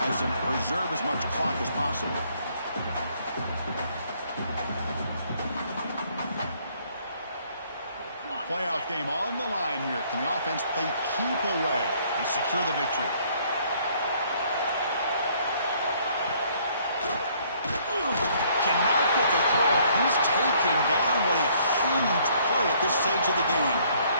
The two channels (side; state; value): both; inverted; correlation -0.63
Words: and preserve as much clock as possible. Playoff game on the line here. Can the offense play keep away and secure the victory? Cannot get the throw. He's taken down. What a huge play at this stage of the game.